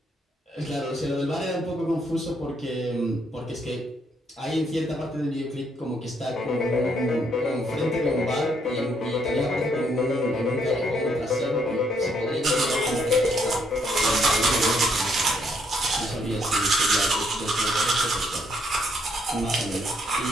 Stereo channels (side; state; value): both; normal; correlation 0.72